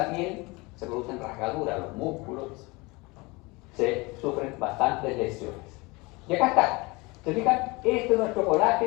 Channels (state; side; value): quieter; right; 25.0 dB